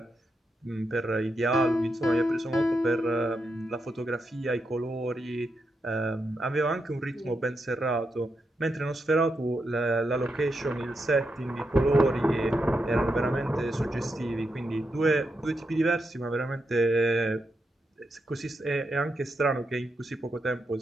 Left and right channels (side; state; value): both; normal; correlation 0.84